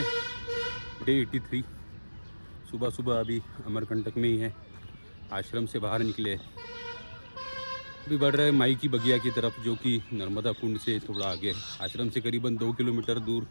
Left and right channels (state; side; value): inverted; both; correlation -1.00